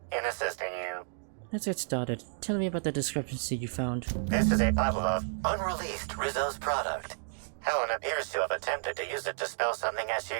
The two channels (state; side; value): silent; left; digital silence